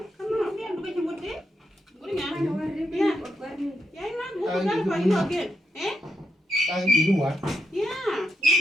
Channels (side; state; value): both; normal; correlation 0.82